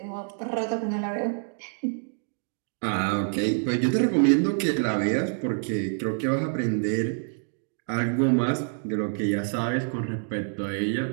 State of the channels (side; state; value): left; silent; 57 dB below the other